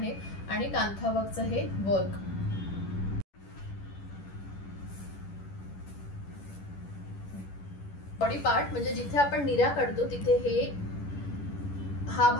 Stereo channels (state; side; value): late; right; 10 ms